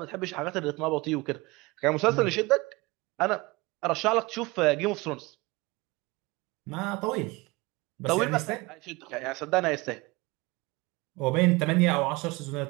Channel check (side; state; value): left; quieter; 23.5 dB